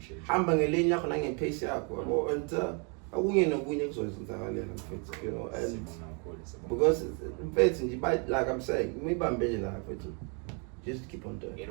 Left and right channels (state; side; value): quieter; left; 36.6 dB